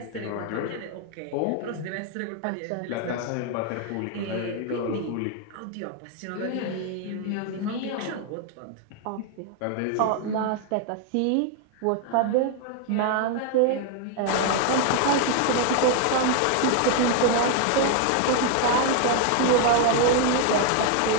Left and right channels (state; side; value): different; both; correlation 0.01